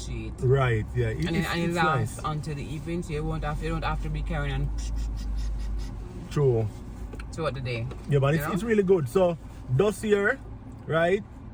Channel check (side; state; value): both; identical; correlation 1.00